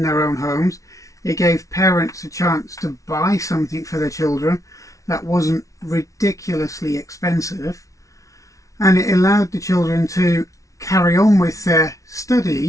their own homes. It gave parents a chance to buy something for their children that wasn't ridiculously expensive, and it allowed the children to carry on with their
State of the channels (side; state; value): right; late; 0.16 ms